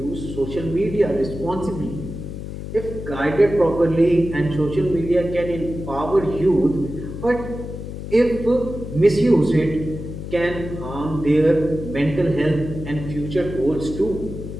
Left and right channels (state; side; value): noise; left; hum, 8 dB below the sound